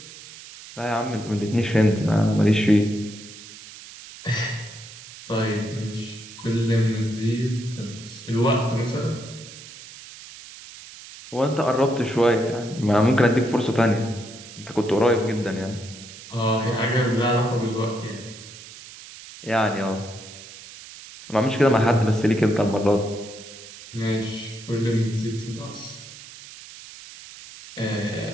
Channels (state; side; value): noise; right; hiss, 16 dB below the sound